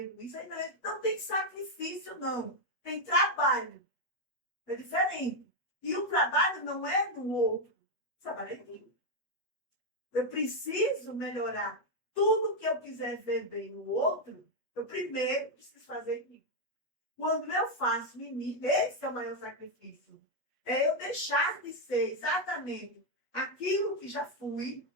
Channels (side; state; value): right; late; 8.2 ms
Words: isso, aí não tem sacrifício, não. Tem trabalho. É diferente. E o trabalho não é no outro. O trabalho é em mim. Eu preciso melhorar tudo que eu quiser ver bem no outro, eu primeiro preciso fazer em mim. Quando eu faço em mim, esse é o maior sacrifício. É eu deixar de ser exatamente aquilo que já fui,